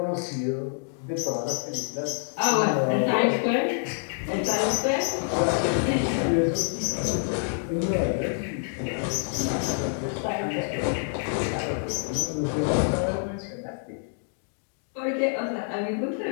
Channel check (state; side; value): silent; right; digital silence